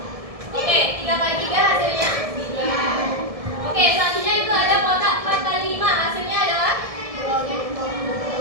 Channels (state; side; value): late; left; 1.7 ms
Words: oke, 3 kali 3 hasilnya 3. Oke, selanjutnya itu ada kotak 4 kali 5 hasilnya adalah oke,